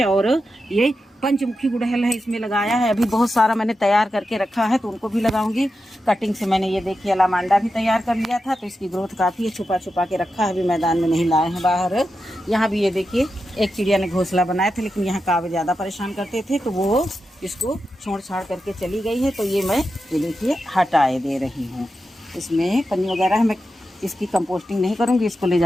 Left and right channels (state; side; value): normal; both; correlation 0.89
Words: और ये पंचमुखी गुड़हल है, इसमें लगाया है। अभी बहुत सारा मैंने तैयार करके रखा है, तो उनको भी लगाऊंगी। कटिंग से मैंने ये देखिए अलामांडा भी तैयार कर लिया था, तो इसकी ग्रोथ काफ़ी है। छुपा छुपा के रखा है, अभी मैदान में नहीं लाए हैं बाहर। यहाँ भी ये देखिए, एक चिड़िया ने घोंसला बनाया था, लेकिन यहाँ कावे ज़्यादा परेशान करते थे, तो वो इसको छोड़ छाड़ करके चली गई है। तो ये मैं ये देखिए हटाए दे रही हूँ। इसमें पन्नी वगैरह है, मैं इसकी कंपोस्टिंग नहीं करूँगी, इसको ले